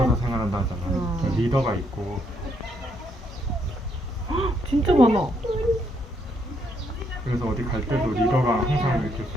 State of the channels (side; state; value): both; normal; correlation 0.73